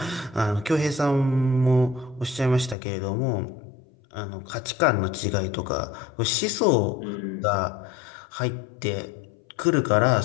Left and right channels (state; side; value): drops out; right; at 2.8 s